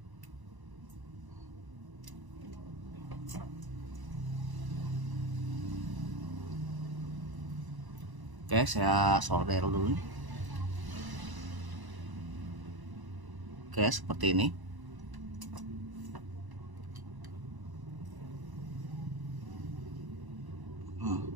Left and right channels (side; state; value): left; late; 1.0 ms